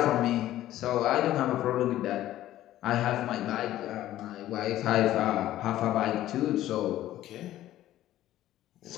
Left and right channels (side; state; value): right; quieter; 13.8 dB